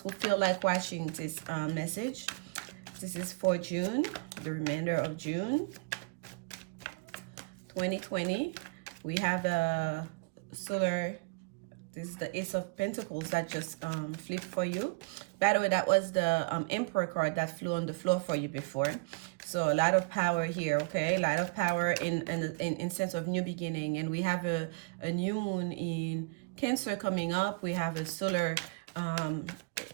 feel like watching this message. This is for June, the remainder of June 2020. We have a solar, this is the Ace of Pentacles that just flipped for you. By the way, that was the Emperor card that flew on the floor for you before. So a lot of power here, okay? A lot of power in sense of new beginning. And we have a new moon in Cancer coming up. We have a solar,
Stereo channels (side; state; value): left; quieter; 29.8 dB